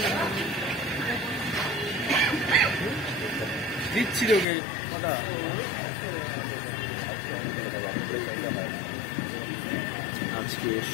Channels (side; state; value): right; drops out; at 4.5 s